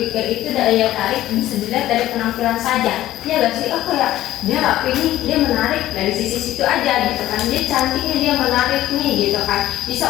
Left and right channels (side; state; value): right; quieter; 14.3 dB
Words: itu daya tarik bisa dilihat dari penampilan saja ya gak sih, oh kayak dia rapi nih, dia menarik dari sisi situ aja gitu kan, dia cantiknya, dia menarik nih gitu kan, bisa